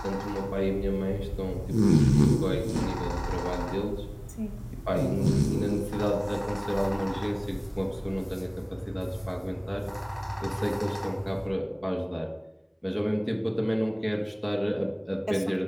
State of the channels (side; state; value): both; identical; correlation 1.00